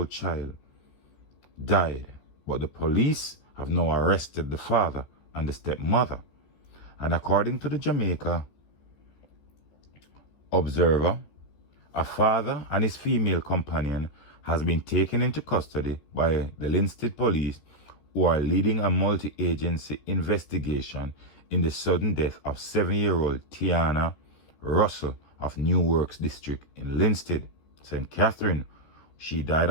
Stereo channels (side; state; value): right; late; 14 ms